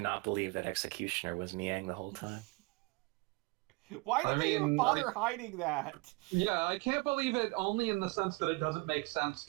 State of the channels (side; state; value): left; quieter; 25.5 dB